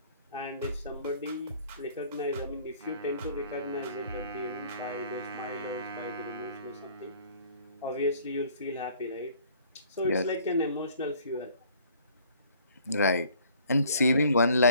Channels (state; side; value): inverted; both; correlation -0.56